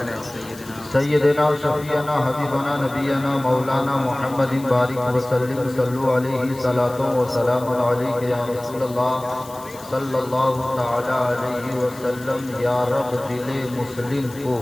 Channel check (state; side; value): noise; left; hiss, 19 dB below the sound